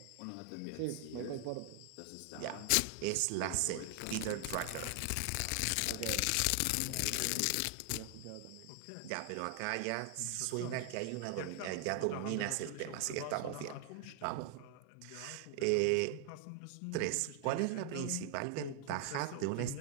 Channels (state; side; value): different; both; correlation 0.00